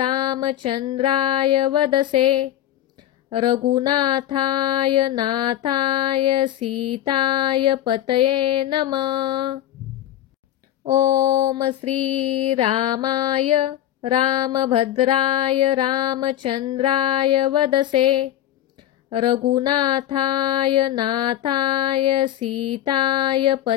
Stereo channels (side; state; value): right; quieter; 12.4 dB